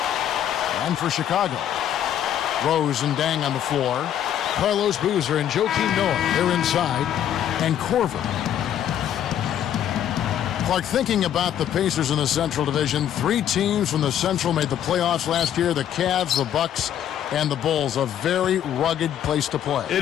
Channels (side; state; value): right; quieter; 10.4 dB